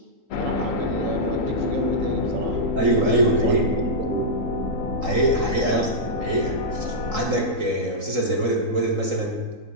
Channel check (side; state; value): left; late; 3.8 ms